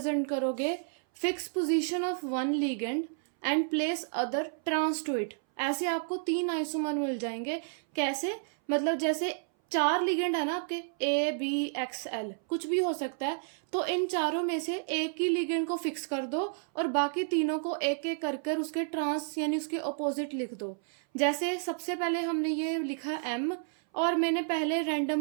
करोगे, fix position of one ligand and place other trans to it. ऐसे आपको 3 आइसोमर मिल जाएंगे। कैसे, मतलब जैसे 4 लिगेंड है ना आपके ABXL, कुछ भी हो सकता है, तो इन चारों में से एक ही लिगेंड को फिक्स कर दो और बाकी तीनों को एक एक कर उसके ट्रांस यानी उसके ऑपोजिट लिख दो। जैसे सबसे पहले हमने ये लिखा M और मैंने पहले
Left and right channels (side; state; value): left; silent; 57 dB below the other